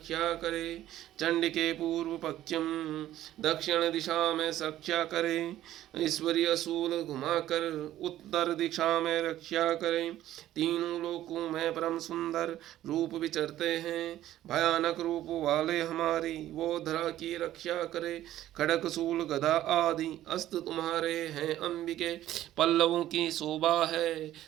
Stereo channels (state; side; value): quieter; left; 13.4 dB